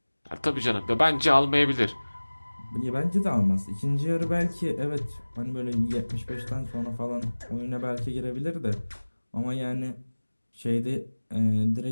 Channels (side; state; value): both; inverted; correlation -1.00